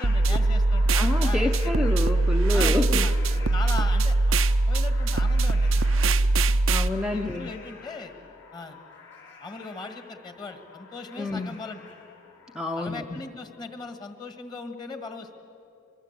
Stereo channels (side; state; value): both; normal; correlation 0.85